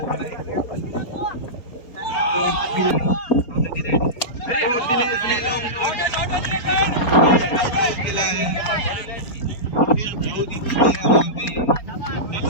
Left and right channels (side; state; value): right; late; 4.3 ms